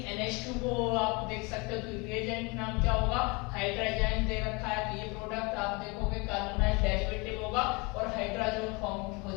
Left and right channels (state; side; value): quieter; right; 28.0 dB